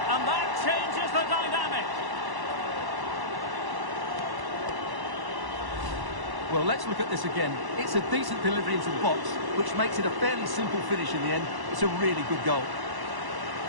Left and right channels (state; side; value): late; left; 1.1 ms